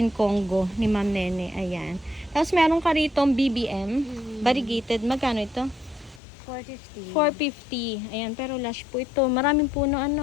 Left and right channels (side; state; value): right; drops out; at 6.2 s